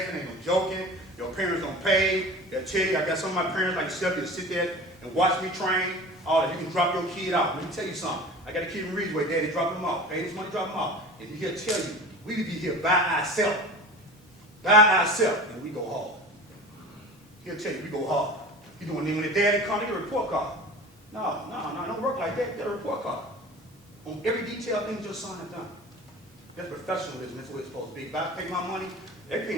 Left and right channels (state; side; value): normal; both; correlation 0.36